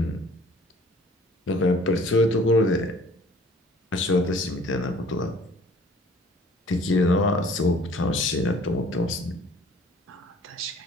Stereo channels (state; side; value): normal; both; correlation 0.53